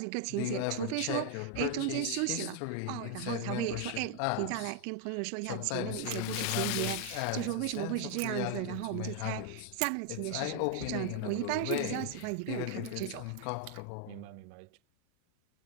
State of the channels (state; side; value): different; both; correlation 0.00